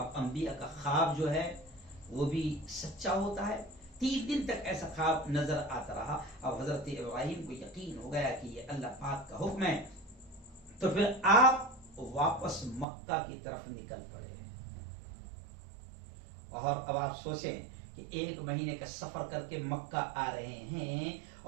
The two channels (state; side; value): drops out; left; at 12.9 s